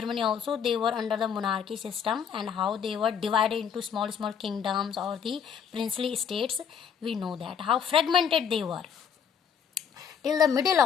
also, they were under the monarchy system, and how they were divided into small kingdoms or the princely states. We know that how fragmented they were till the middle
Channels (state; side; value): quieter; right; 7.5 dB